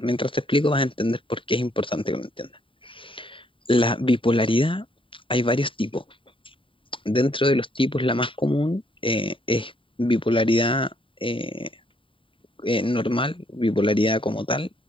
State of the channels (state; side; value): late; right; 0.25 ms